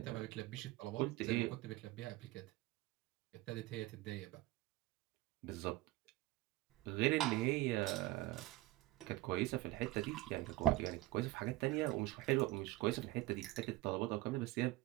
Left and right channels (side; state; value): left; quieter; 17.7 dB